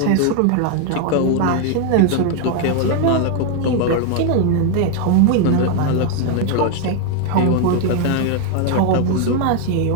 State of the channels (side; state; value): both; different; correlation 0.00